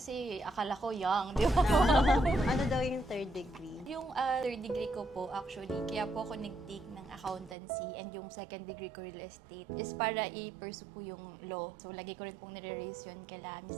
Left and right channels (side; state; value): left; drops out; at 7.6 s